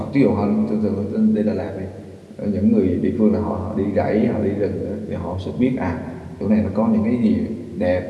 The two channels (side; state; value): both; identical; correlation 1.00